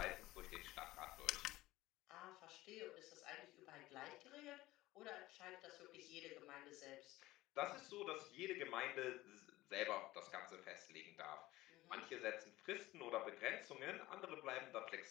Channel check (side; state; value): right; quieter; 17.7 dB